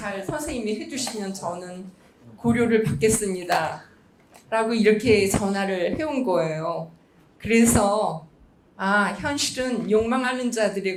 선생님이 해주시면 저는 고려를 받겠습니다 라고 이렇게 전화를 해온 거예요. 그래서 현실은 욕망하는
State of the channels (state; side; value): identical; both; correlation 1.00